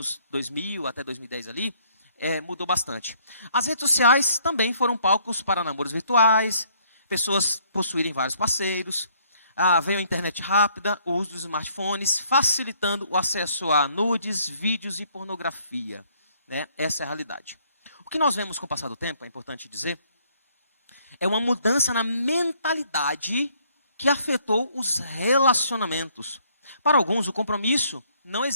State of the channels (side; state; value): both; inverted; correlation -0.64